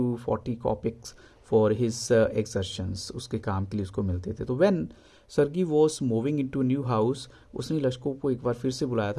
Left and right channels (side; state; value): both; identical; correlation 1.00